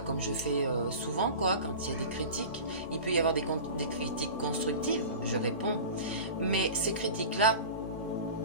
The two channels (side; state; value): both; inverted; correlation -0.34